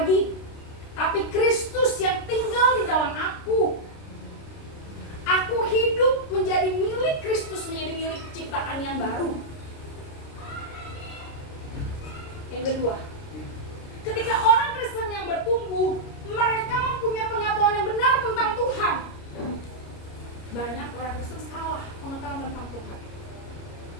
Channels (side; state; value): right; late; 29 ms